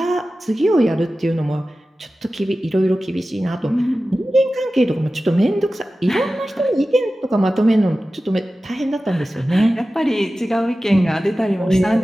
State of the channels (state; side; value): normal; both; correlation 0.95